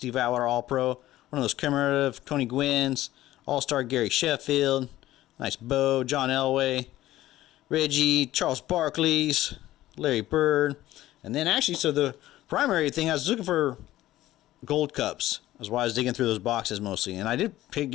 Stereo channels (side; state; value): right; quieter; 15.0 dB